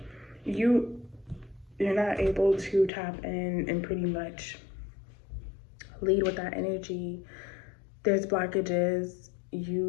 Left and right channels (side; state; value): right; drops out; at 2.9 s